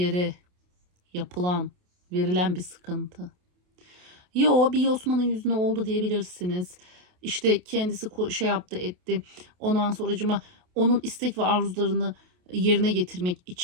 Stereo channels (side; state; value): left; late; 28 ms